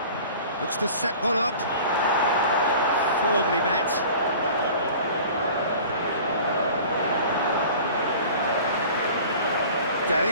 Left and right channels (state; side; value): inverted; both; correlation -0.43